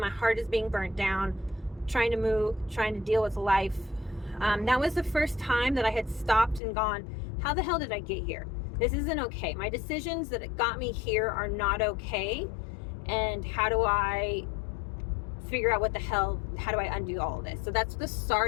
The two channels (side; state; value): right; drops out; at 6.6 s